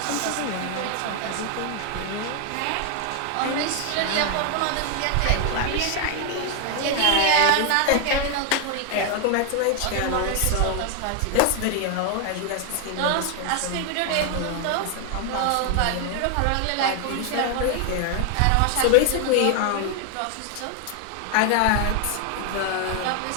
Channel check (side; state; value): both; different; correlation 0.00